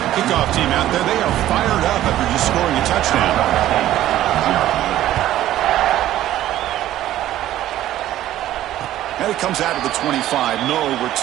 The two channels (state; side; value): quieter; left; 13.4 dB